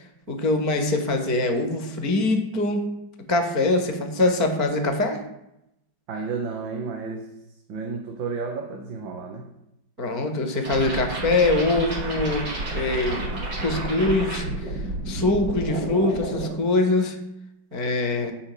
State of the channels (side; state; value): left; late; 4.5 ms